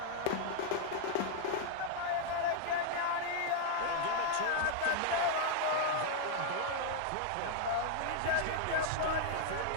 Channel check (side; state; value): both; different; correlation -0.01